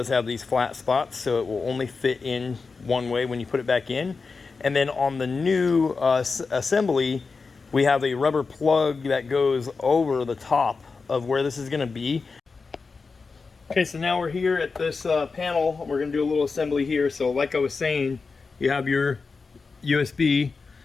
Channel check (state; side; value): quieter; right; 4.5 dB